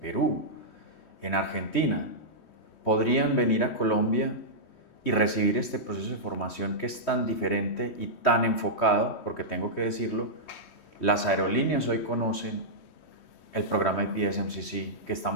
Perú, en Argentina, podrían venir a Colombia y recibir este proceso de formación que es tan diferente y tan enfocado, porque tengo que decirlo, las aerolíneas hoy conocen el programa APS-MCC que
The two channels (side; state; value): right; late; 3.1 ms